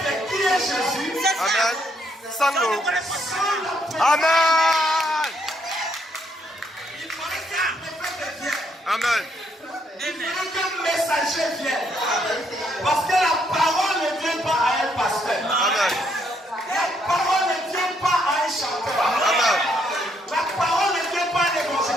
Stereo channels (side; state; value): both; normal; correlation 0.73